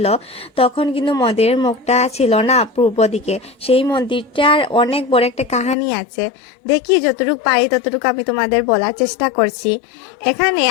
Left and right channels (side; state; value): right; drops out; at 5.8 s